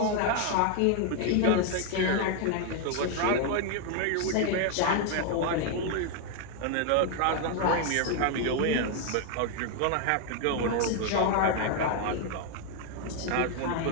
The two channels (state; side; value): different; both; correlation 0.00